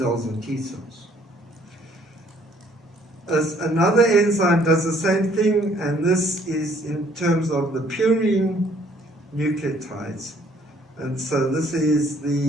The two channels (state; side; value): normal; both; correlation 0.62